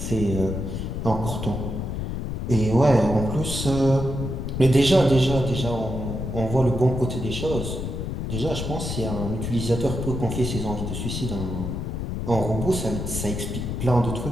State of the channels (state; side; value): noise; left; rumble, 4 dB below the sound